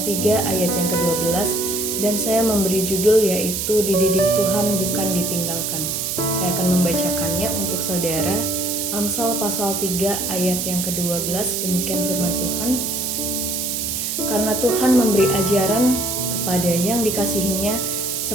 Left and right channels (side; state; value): right; noise; hiss, 2 dB below the sound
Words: 3 ayat yang ke-12 dan saya memberi judul yaitu Dididik Tuhan Bukan Ditinggalkan. Saya akan membacakannya untuk saudara. Amsal pasal 3 ayat yang ke-12, demikian firman Tuhan. Karena Tuhan memberi ajaran kepada yang dikasihinya